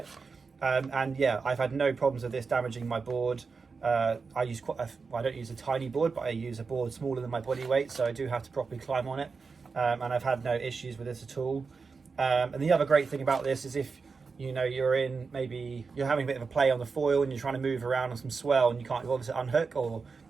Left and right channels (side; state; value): left; quieter; 4.8 dB